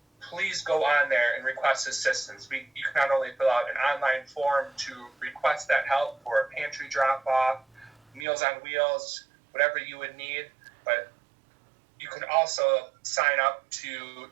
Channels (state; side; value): drops out; left; at 8.2 s